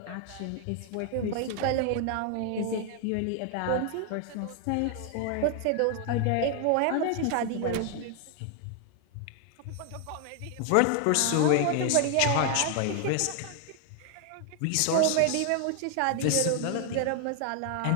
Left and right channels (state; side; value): different; both; correlation 0.00